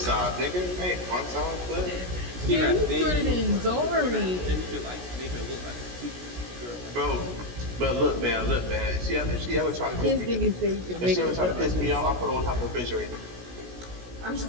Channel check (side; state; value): left; late; 16 ms